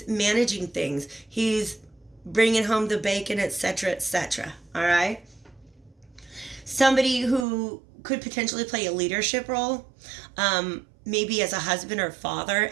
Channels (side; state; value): left; drops out; at 7.5 s